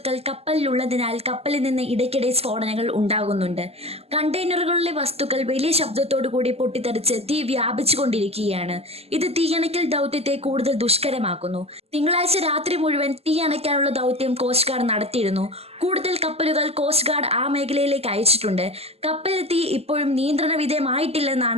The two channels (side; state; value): left; late; 0.29 ms